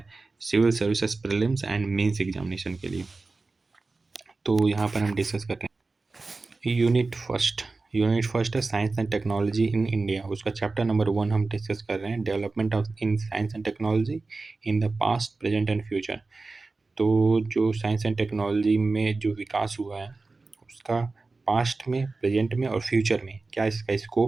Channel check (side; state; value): left; quieter; 3.7 dB